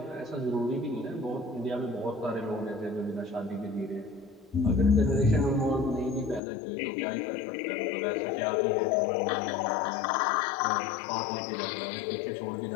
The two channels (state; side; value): drops out; right; at 6.4 s